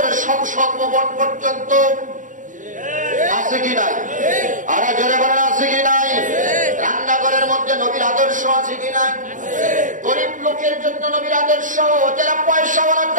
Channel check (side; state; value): left; late; 0.37 ms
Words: সংসদ ভবন পর্যন্ত আছে কি নাই? আর জোরে বলেন আছে কি নাই? রান্নাঘরের মধ্যে নবীর আদর্শ আছে কি নাই? গরিব লোকের জন্য নবীর আদর্শ, যারা পয়সাওয়ালা